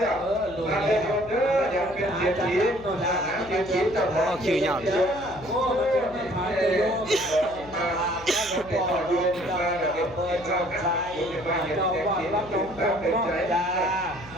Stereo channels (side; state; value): left; noise; hum, 18 dB below the sound